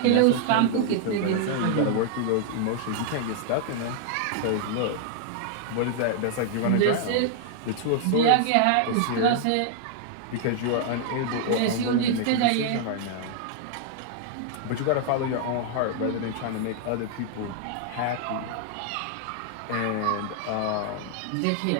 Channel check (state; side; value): different; both; correlation 0.00